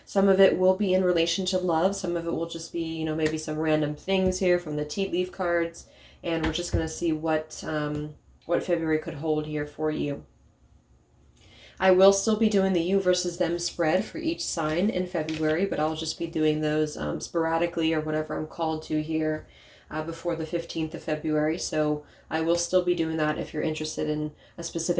Some of it will be in relation to love, some of it will just be, maybe some random things here from the tea leaf cards. And we're just going to see what February could hold here for you. I will still be doing the you versus them spread for each sign in February, but I'll just be doing those sporadically or whatever I'm called to here before the 15th of February. So I will still be doing that if you're interested in a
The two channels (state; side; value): identical; both; correlation 1.00